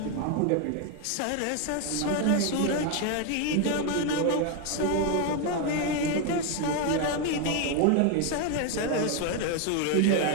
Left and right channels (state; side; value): different; both; correlation 0.01